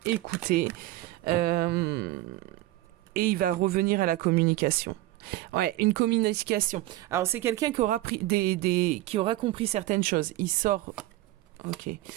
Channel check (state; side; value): quieter; left; 16.7 dB